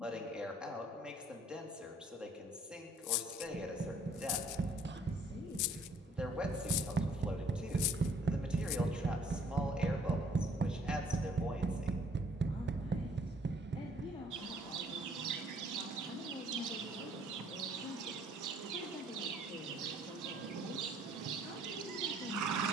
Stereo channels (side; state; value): both; normal; correlation 0.60